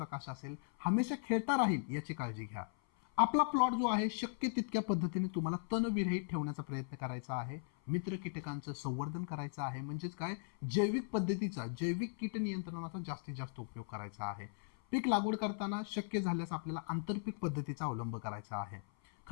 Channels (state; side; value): silent; right; 52 dB below the other